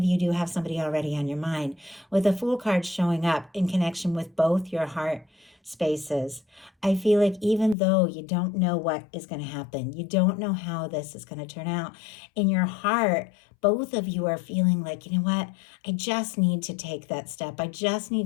you do have somebody already on your mind, with the Fool card showing up in connection with both your heart spaces. I feel like even though you don't know what is going to happen, you don't know how this is going to turn out, in your heart, both of you are feeling like, you know what, I just need to take that step. I just need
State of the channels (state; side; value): drops out; right; at 7.8 s